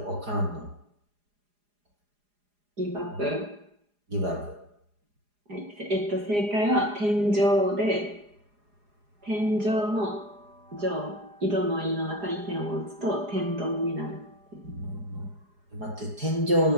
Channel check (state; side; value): late; left; 4.9 ms